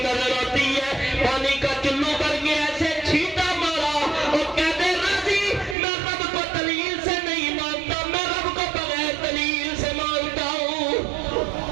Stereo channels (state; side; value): drops out; left; at 5.8 s